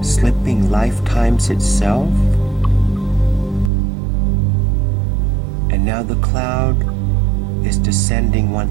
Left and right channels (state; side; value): drops out; left; at 3.7 s